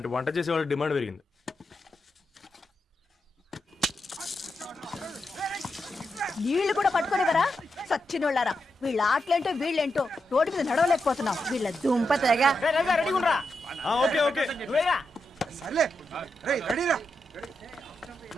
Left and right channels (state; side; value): normal; both; correlation 0.86